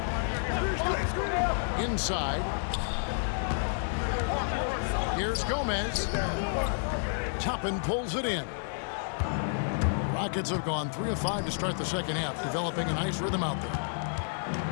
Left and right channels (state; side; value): silent; right; digital silence